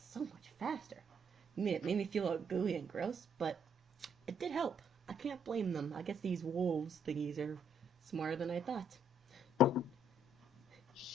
so much faster. I mean, it made me feel all gooey and gross, but it did help. I can't blame them. I guess these wolves thingies are smarter than I thought.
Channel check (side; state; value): both; normal; correlation 0.69